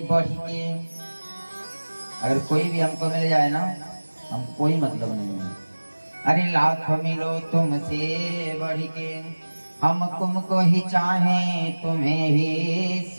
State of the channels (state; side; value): inverted; both; correlation -1.00